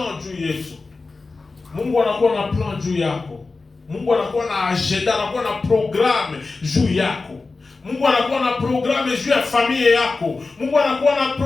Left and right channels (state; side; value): quieter; right; 3.8 dB